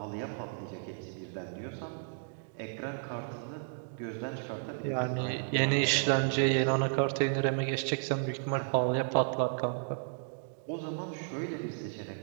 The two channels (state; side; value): silent; left; digital silence